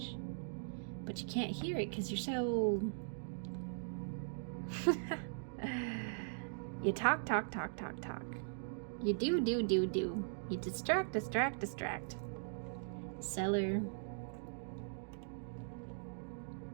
But you can't hear it because you're so... You talk. You do. You distract. Cellar.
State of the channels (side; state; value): left; silent; digital silence